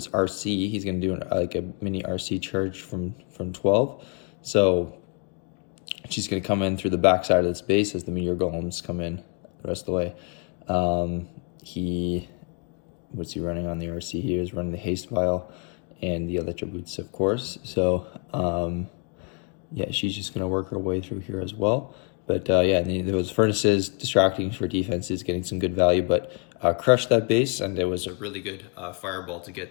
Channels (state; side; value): quieter; right; 39.2 dB